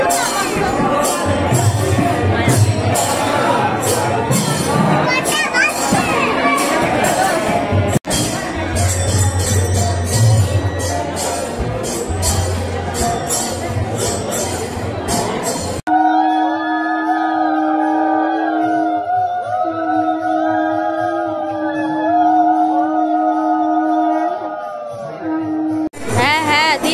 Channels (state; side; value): identical; both; correlation 1.00